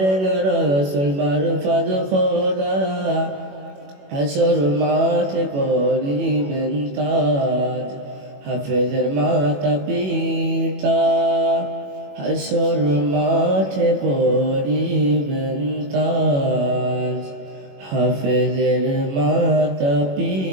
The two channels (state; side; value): late; left; 21 ms